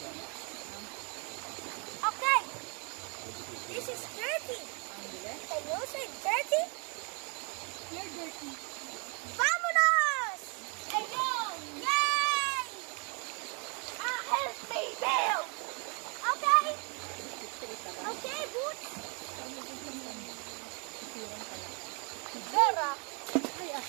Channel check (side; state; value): left; quieter; 34.5 dB